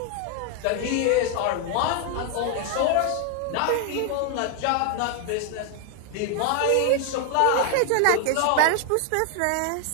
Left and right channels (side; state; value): both; different; correlation 0.01